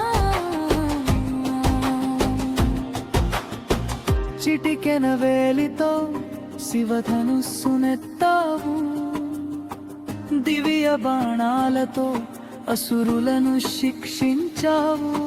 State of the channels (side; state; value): both; identical; correlation 1.00